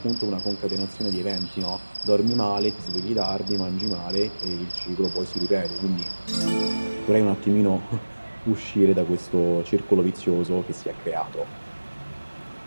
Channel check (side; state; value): both; inverted; correlation -1.00